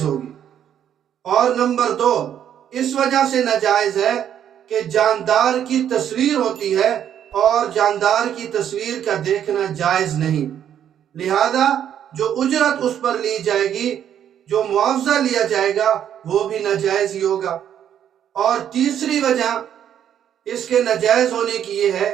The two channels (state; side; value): quieter; left; 9.7 dB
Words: ہوگی۔ اور نمبر 2، اس وجہ سے ناجائز ہے کہ جاندار کی تصویر ہوتی ہے، اور جاندار کی تصویر کا دیکھنا جائز نہیں، لہذا جو اجرت اس پر لی جائے گی، جو معاوضہ لیا جائے گا، وہ بھی ناجائز ہی ہوگا۔ اور تیسری وجہ اس کے ناجائز ہونے کی یہ ہے